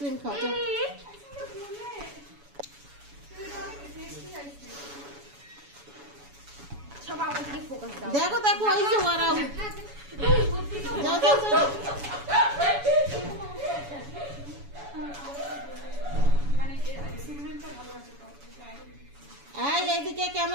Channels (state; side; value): late; left; 7.1 ms